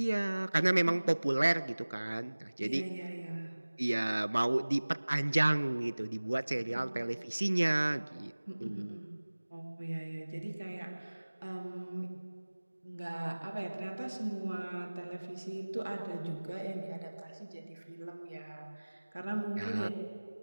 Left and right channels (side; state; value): both; inverted; correlation -1.00